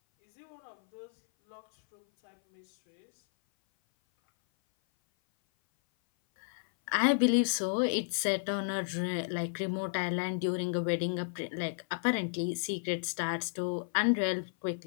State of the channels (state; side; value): silent; right; 56 dB below the other